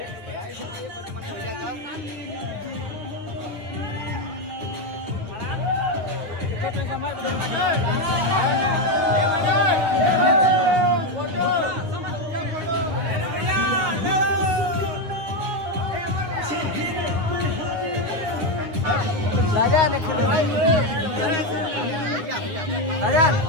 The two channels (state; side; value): late; left; 9.7 ms